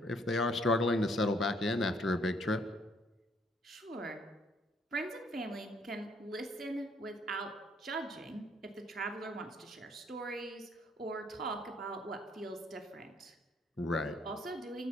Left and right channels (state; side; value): normal; both; correlation 0.65